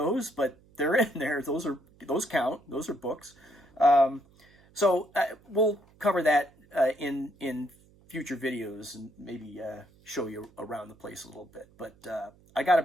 but they're in there. Those count. Those are books. So we'll cover that in future videos and maybe show you around the place a little bit. But I got to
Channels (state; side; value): noise; right; hum, 29 dB below the sound